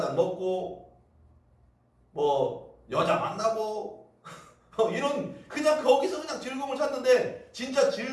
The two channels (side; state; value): both; identical; correlation 1.00